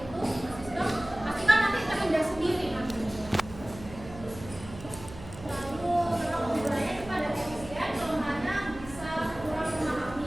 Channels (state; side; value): noise; right; hum, 15 dB below the sound